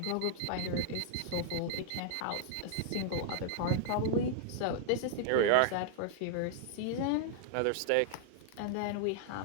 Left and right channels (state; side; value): different; both; correlation -0.01